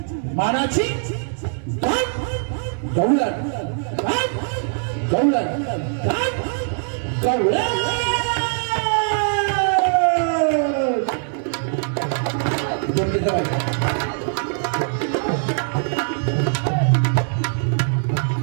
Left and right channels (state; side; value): silent; left; 64 dB below the other